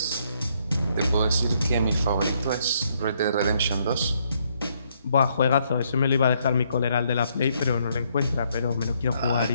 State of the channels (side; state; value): both; inverted; correlation -0.71